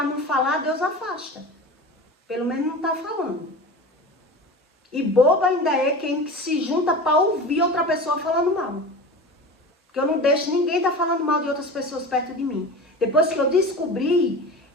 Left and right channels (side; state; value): both; normal; correlation 0.32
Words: não falar, Deus afasta. Pelo menos não está falando. E boba ainda é quem se junta para ouvir outra pessoa falando mal. Porque eu não deixo ninguém estar falando mal de outras pessoas perto de mim. Depois que eu descobri,